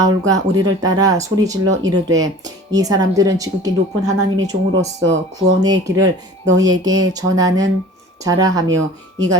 우리를 따라 소리질러 이르되 이 사람들은 지극히 높은 하나님의 종으로서 구원의 길을 너희에게 전하는 자라 하며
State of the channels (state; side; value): normal; both; correlation 0.43